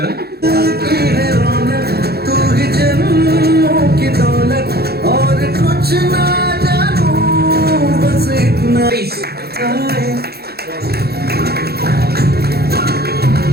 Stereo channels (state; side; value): late; left; 0.46 ms